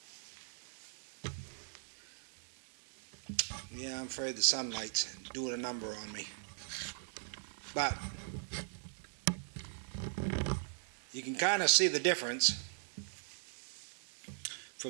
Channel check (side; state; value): left; silent; digital silence